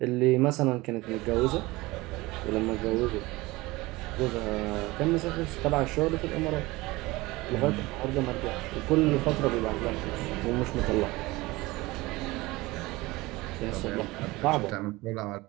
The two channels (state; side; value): quieter; left; 21.0 dB